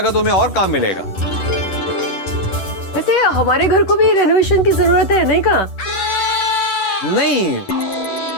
तो तुम्हें और काम मिलेगा। वैसे हमारे घर को भी रेनोवेशन की जरूरत है, नहीं का? नहीं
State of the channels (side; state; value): right; late; 10 ms